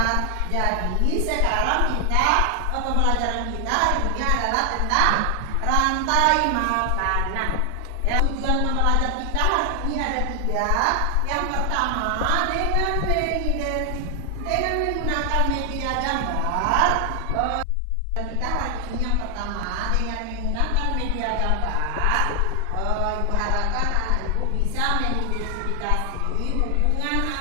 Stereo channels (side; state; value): both; different; correlation 0.00